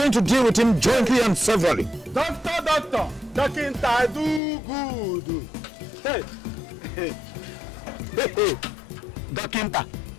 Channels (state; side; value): drops out; right; at 4.4 s